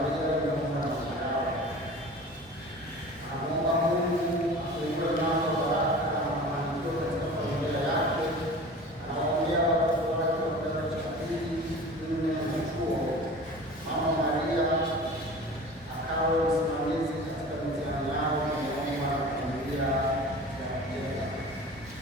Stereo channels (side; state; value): both; normal; correlation 0.38